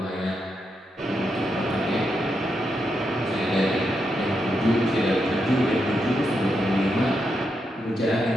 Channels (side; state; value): both; normal; correlation 0.83